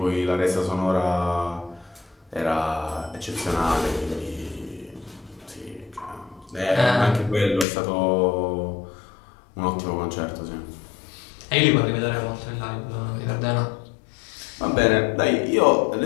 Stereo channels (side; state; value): right; drops out; at 7.7 s